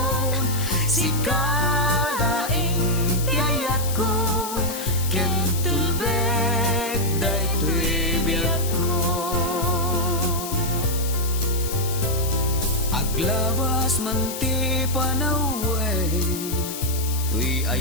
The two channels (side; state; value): left; noise; hiss, 8 dB below the sound